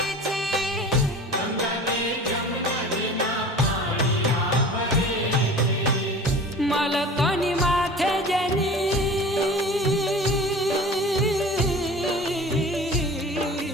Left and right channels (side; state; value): both; normal; correlation 0.40